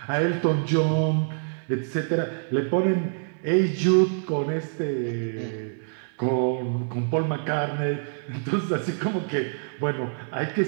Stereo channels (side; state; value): left; silent; digital silence